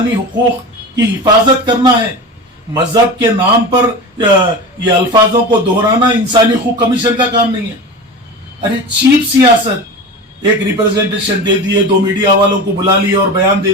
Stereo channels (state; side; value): normal; both; correlation 0.29